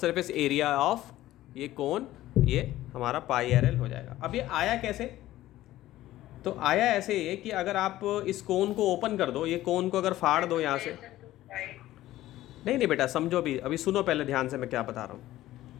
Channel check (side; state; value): right; quieter; 15.1 dB